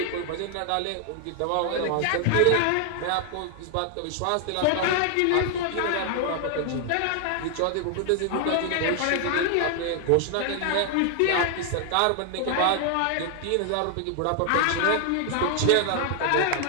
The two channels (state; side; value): different; both; correlation 0.00